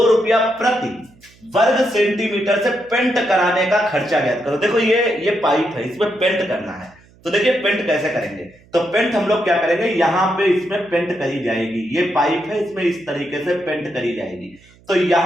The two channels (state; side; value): noise; right; hum, 28 dB below the sound